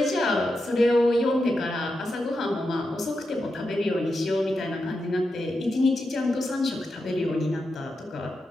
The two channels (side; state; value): both; normal; correlation 0.87